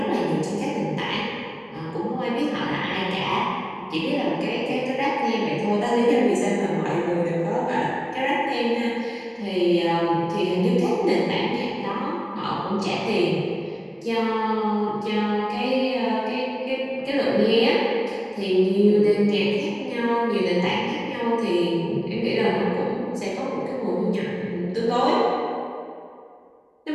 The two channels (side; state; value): both; identical; correlation 1.00